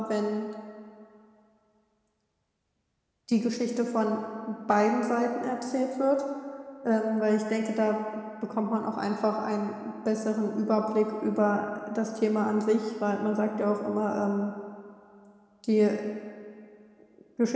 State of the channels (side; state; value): both; identical; correlation 1.00